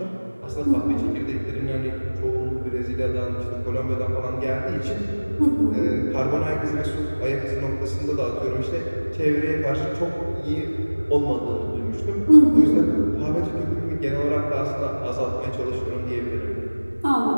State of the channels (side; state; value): both; inverted; correlation -1.00